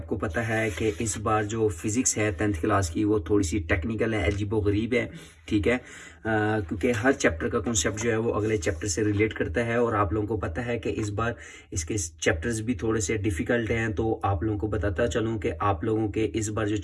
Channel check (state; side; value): identical; both; correlation 1.00